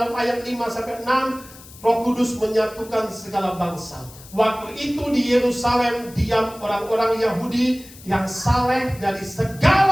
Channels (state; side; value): noise; left; hiss, 20 dB below the sound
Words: ayat 5-6, Roh Kudus menyatukan segala bangsa. Waktu itu di Yerusalem diam orang-orang Yahudi yang saleh dari